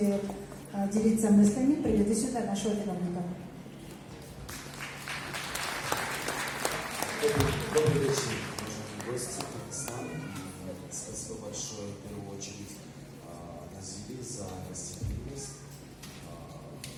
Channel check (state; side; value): identical; both; correlation 1.00